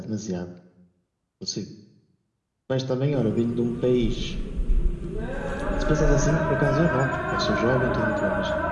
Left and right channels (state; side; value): identical; both; correlation 1.00